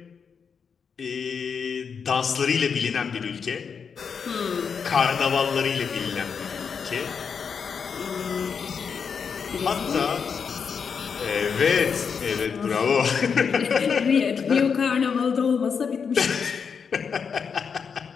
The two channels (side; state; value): right; quieter; 6.3 dB